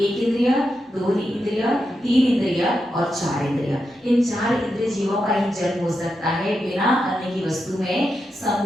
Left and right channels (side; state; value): both; normal; correlation 0.86